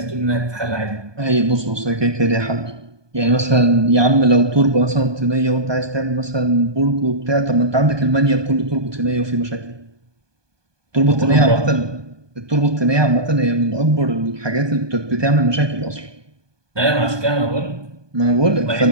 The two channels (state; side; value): late; left; 1.2 ms